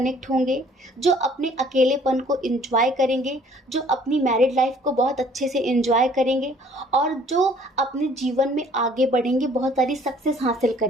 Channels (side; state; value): both; normal; correlation 0.57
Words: होंगे, जो अपने अकेलेपन को एंजॉय करेंगे, जो अपनी मैरिड लाइफ को बहुत अच्छे से एंजॉय करेंगे, और जो अपने जीवन में आगे बढ़ेंगे, बहुत सारी सक्सेस हासिल